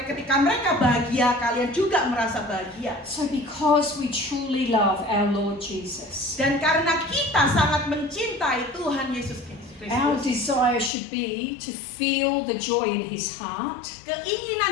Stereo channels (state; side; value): drops out; right; at 10.9 s